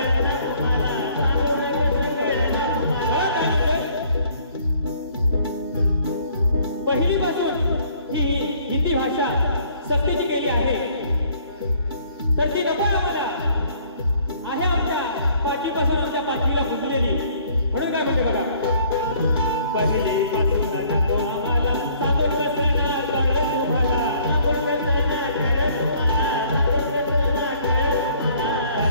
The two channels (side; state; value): both; inverted; correlation -0.60